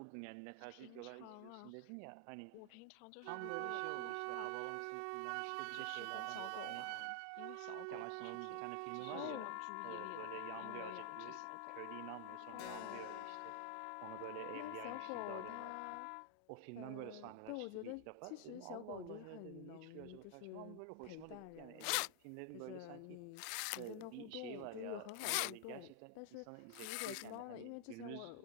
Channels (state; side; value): different; both; correlation 0.00